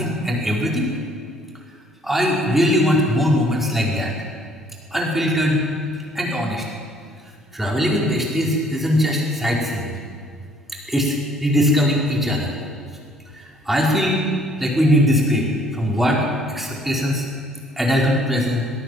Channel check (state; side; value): normal; both; correlation 0.61